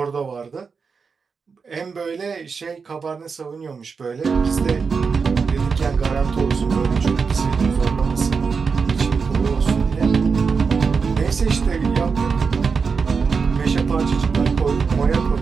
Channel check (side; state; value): left; quieter; 5.3 dB